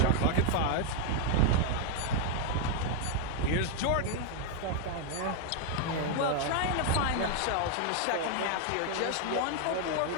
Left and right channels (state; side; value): different; both; correlation 0.00